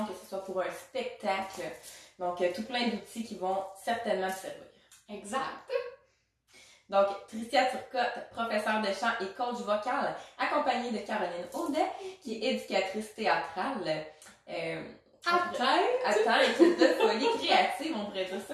que ce soit pour un spectacle. Donc, tout plein d'outils qui vont certainement te servir. Exact. Donc, Tricia Turcotte, professeure de chant et coach vocal, accompagnée de Caroline Audet, qui est éducatrice théâtrale. Attends, équipe de folie créative, on pourrait dire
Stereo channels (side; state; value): both; identical; correlation 1.00